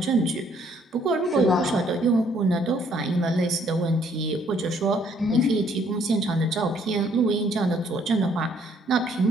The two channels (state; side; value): normal; both; correlation 0.65